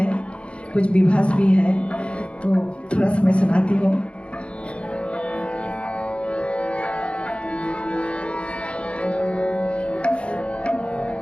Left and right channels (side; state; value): right; late; 0.059 ms